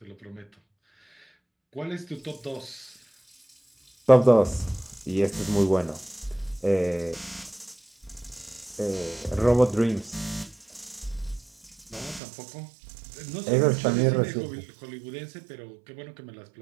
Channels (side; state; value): left; drops out; at 12.2 s